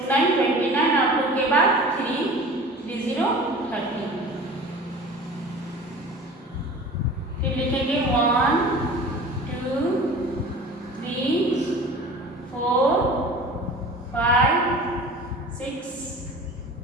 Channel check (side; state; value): both; normal; correlation 0.40